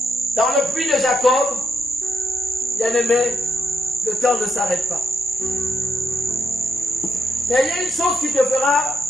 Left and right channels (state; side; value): normal; both; correlation 0.77